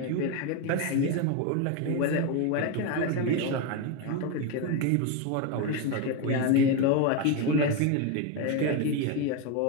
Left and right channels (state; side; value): different; both; correlation 0.03